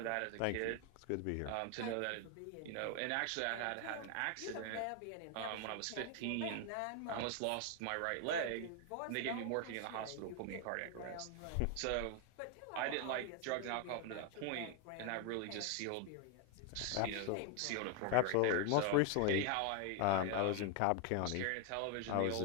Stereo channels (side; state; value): both; different; correlation 0.01